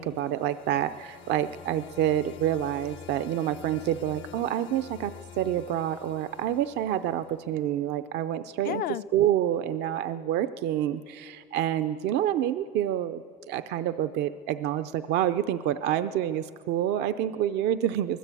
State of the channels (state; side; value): quieter; left; 10.2 dB